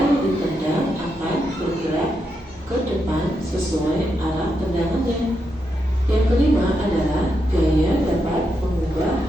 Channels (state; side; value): normal; both; correlation 0.83